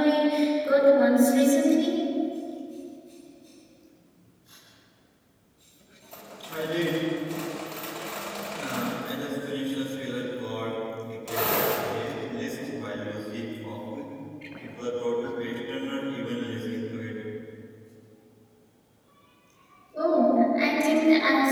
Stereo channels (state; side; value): identical; both; correlation 1.00